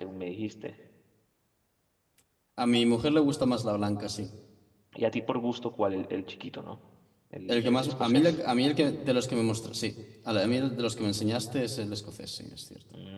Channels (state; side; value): identical; both; correlation 1.00